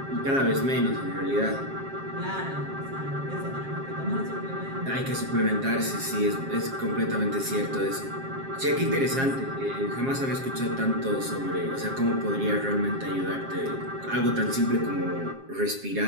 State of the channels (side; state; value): left; late; 7.5 ms